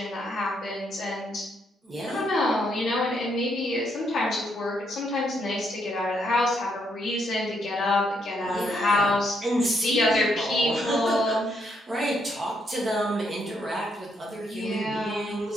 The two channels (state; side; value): normal; both; correlation 0.75